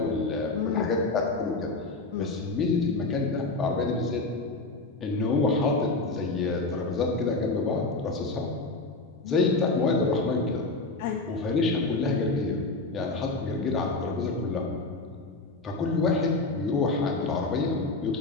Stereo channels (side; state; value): right; quieter; 3.3 dB